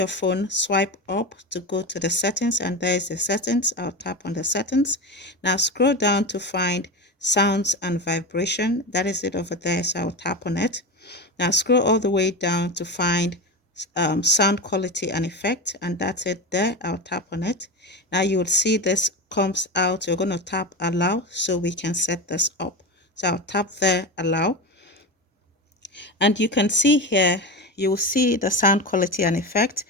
phone, swipe up to go to the settings, and there's the settings. I'll tap on the settings. Now scroll down to find sounds and vibration. That is it over there, so I'll tap on it. Now scroll all the way down to find sound quality and effect, and that's it there. I'll tap on it. Now you will see this comes out. You're going to tap allow so we can set this up. So I'll tap there, allow, and you can see here, you will see the sound quality and effect.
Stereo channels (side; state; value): both; normal; correlation 0.22